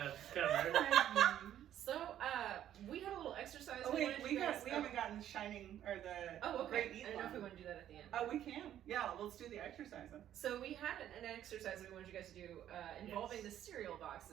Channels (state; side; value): quieter; left; 11.2 dB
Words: cover. So, we had a little exercise. Oh wait, wanted we you guys- haven't gotten the Shining or the Oh, Great okay. Eat I don't know if we one. want to do that at the end. Oh, we can. Yeah, let's do the exercise then. So we had an exercise that we wanted you guys to do involving Yes. the cereal